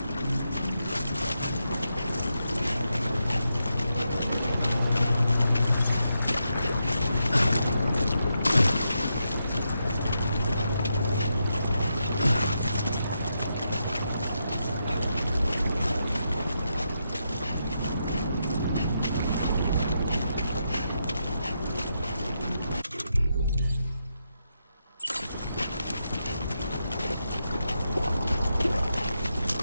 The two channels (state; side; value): inverted; both; correlation -0.84